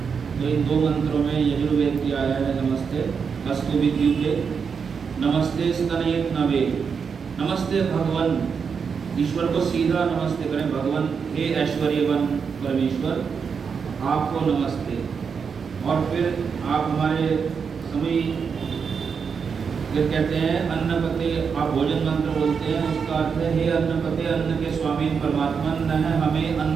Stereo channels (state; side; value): quieter; left; 6.1 dB